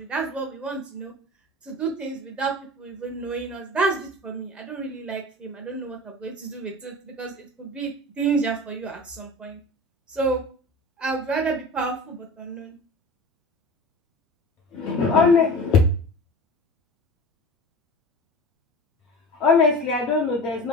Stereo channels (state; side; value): normal; both; correlation 0.35